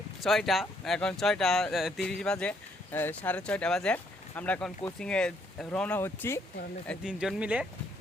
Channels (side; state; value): both; normal; correlation 0.69